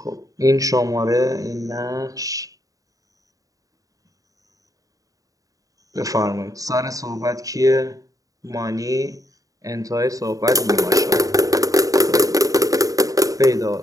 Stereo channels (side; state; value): left; late; 0.17 ms